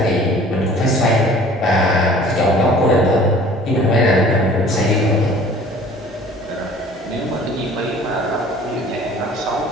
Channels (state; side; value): normal; both; correlation 0.49